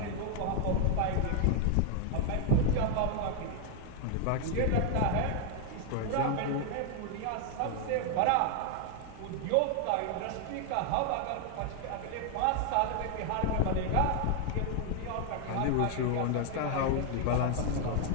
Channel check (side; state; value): both; different; correlation 0.00